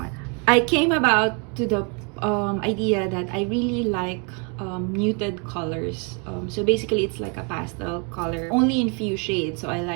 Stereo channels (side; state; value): left; quieter; 35.6 dB